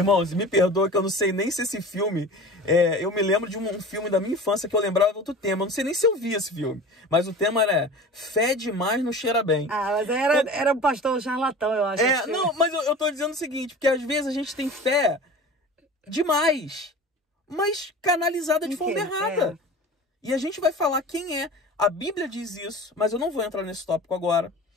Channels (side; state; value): both; normal; correlation 0.37